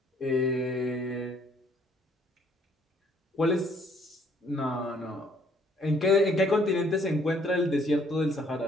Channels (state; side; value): normal; both; correlation 0.63